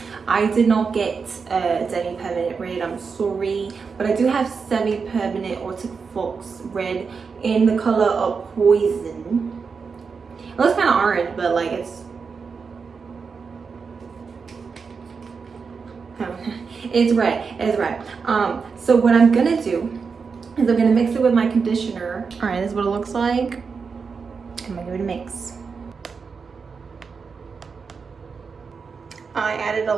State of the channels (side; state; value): left; quieter; 5.3 dB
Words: I did not get demi-permanent red, I'm sorry, but I do have semi-permanent Arctic Fox red in the color of Poison. It looks kind of orange, but like it's red. It's red. So what I'm gonna do is I'm gonna mix it with my conditioner. All right, this is what it looks like. I'm gonna give it a mix. I added a